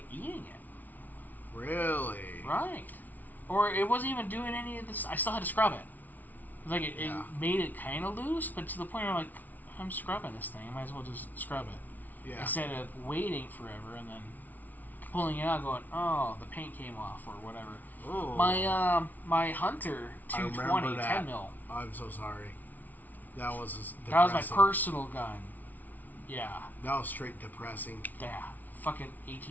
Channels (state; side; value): late; right; 0.080 ms